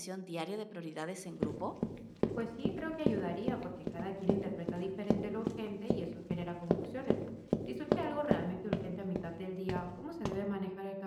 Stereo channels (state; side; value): identical; both; correlation 1.00